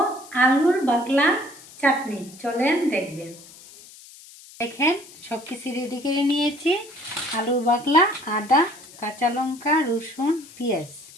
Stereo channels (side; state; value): left; noise; hiss, 20 dB below the sound